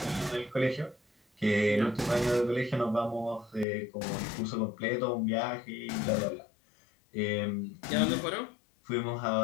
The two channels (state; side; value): drops out; right; at 3.7 s